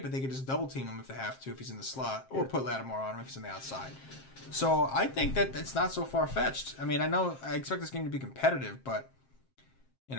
but they could just double team him if they have to, if he's in the slot, or put Lattimore on him if he's on the outside. So I think that it's not so far-fetched. I mean, I expect this game to be competitive, but,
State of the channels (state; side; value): late; right; 7.6 ms